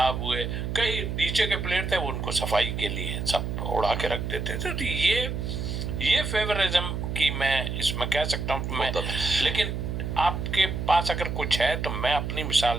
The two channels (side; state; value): right; noise; hum, 3 dB below the sound